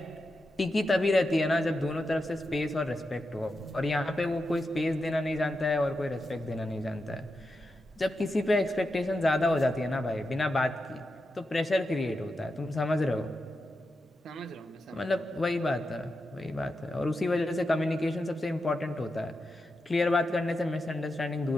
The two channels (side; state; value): both; normal; correlation 0.88